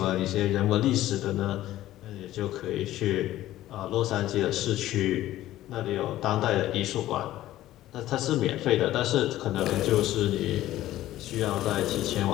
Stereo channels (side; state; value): right; quieter; 14.5 dB